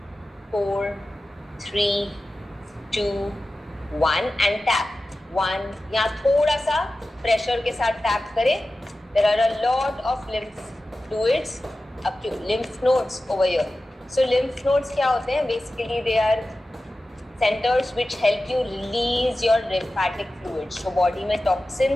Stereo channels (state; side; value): normal; both; correlation 0.94